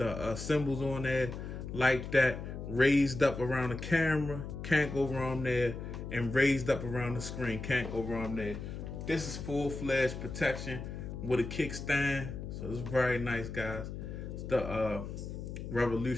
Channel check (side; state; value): left; noise; hum, 7 dB below the sound